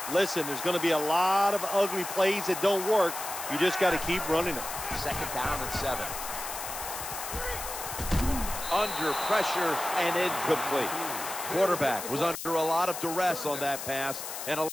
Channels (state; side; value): noise; left; hiss, 7 dB below the sound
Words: listen, there's going to be a lot of ugly plays that don't work. You just got to keep running them. 2nd down and 7. Under pressure and incomplete. Quarterback was under a lot of duress on that pass, and